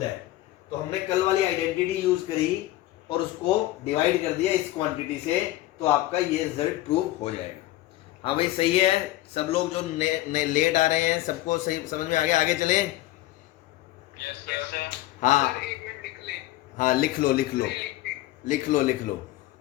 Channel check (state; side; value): quieter; right; 16.3 dB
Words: तो हमने कल वाली आइडेंटिटी यूज करी और उसको डिवाइड कर दिया इस क्वांटिटी से, तो आपका ये रिजल्ट प्रूव हो जाएगा। हाँ भाई सही है। सब लोग जो लेट आ रहे हैं सबको सही समझ में आ गया? आगे चले। हाँ हाँ, लिख लो लिख लो लिख लो लिख लो।